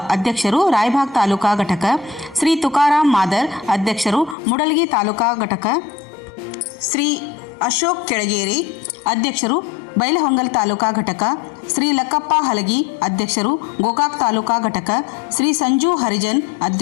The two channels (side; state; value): right; drops out; at 4.4 s